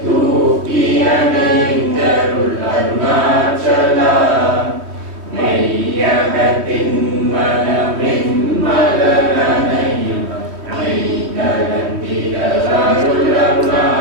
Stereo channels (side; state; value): left; late; 3.2 ms